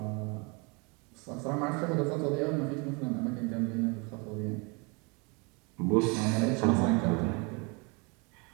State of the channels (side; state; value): left; quieter; 30.6 dB